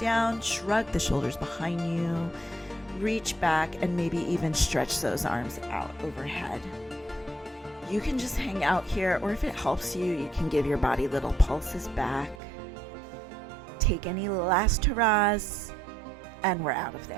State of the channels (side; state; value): left; drops out; at 12.4 s